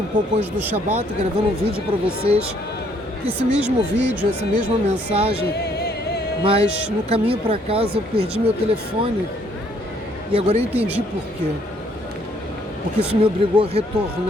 pouco antes do Shabat, gravando um vídeo para vocês, esse mesmo vídeo, essa mesma mensagem, mas no caminho para casa eu perdi meu telefone e agora eu entendi por quê. Porque isso me obrigou a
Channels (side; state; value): both; normal; correlation 0.66